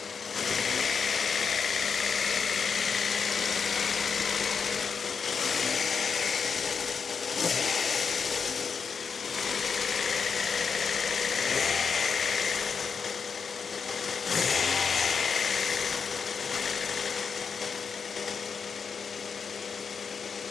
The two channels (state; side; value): quieter; right; 5.9 dB